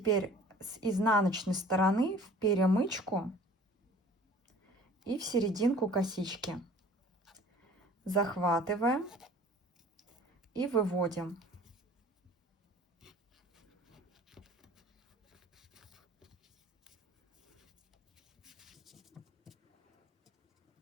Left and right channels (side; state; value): both; normal; correlation 0.48